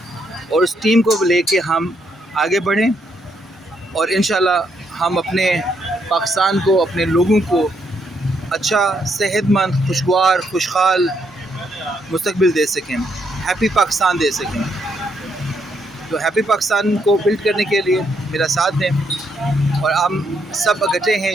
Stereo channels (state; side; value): normal; both; correlation 0.75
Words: और उस टीम को लेके हम आगे बढ़ें और इंशाल्लाह हम अपने पाकिस्तान को, अपने लोगों को अच्छा, सेहतमंद, खुशगवार, खुशहाल मुस्तकबिल दे सकें, हैप्पी पाकिस्तान दे सकें। तो हैप्पी पाकिस्तान को बिल्ड करने के लिए मेरा साथ दें और हम सब इकट्ठे हैं